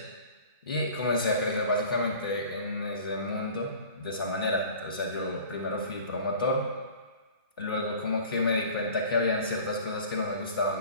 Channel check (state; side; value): inverted; both; correlation -0.44